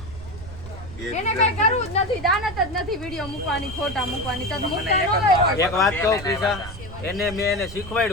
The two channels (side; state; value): right; noise; rumble, 14 dB below the sound